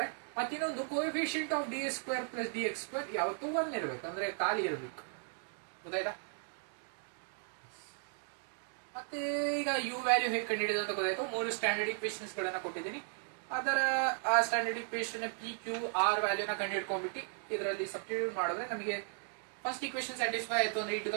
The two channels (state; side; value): silent; left; 54 dB below the other